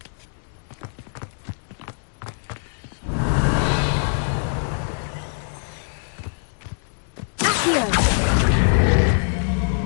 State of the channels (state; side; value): silent; right; digital silence